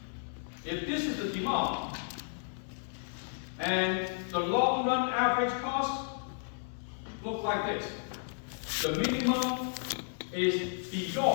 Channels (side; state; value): right; silent; digital silence